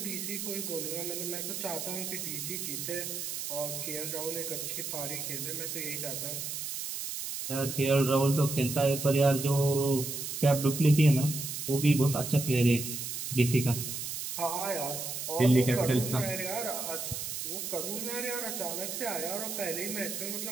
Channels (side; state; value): right; noise; hiss, 5 dB below the sound